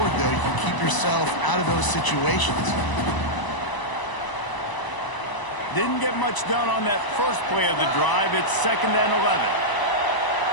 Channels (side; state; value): right; late; 1.0 ms